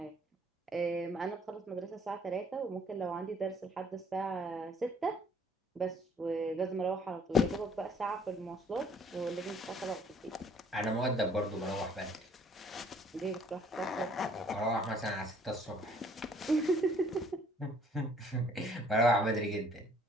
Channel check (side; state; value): both; normal; correlation 0.60